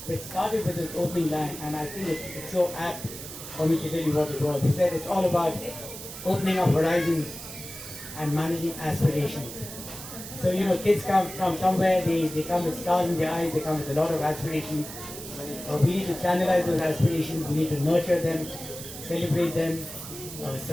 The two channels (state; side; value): noise; right; hiss, 11 dB below the sound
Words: which started with his opening line, and I think it's so apt for me to tell you what it was. He said it's all about opening up horizons and managing aspirations. So kids come from somewhere, they come with stars in their eyes, they come with a lot of aspirations. We need to channelize those aspirations, we need to nurture them, celebrate them,